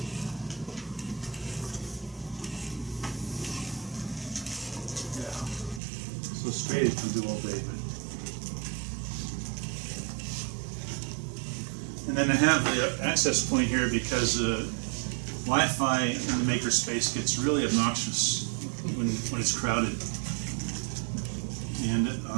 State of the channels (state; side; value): drops out; left; at 5.8 s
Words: Yeah. So straight it can do all day, but. And then I have the access point here because Wi-Fi in the makerspace gets really obnoxious when it's crowded. And